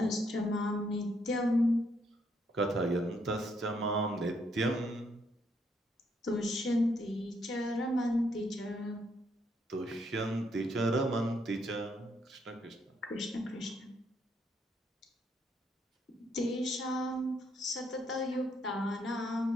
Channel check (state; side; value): normal; both; correlation 0.73